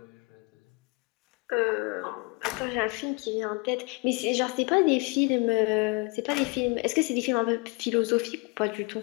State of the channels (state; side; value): quieter; right; 30.4 dB